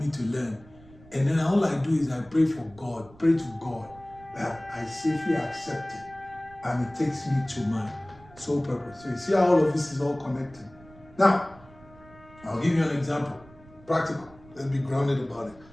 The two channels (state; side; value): noise; right; rumble, 23 dB below the sound